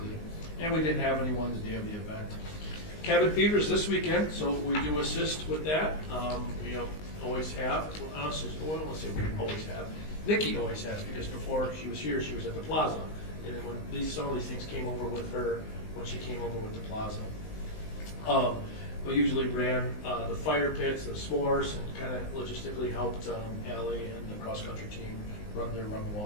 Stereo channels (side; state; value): right; late; 19 ms